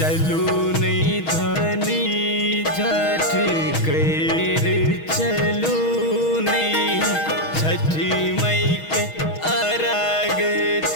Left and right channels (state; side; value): late; right; 6.3 ms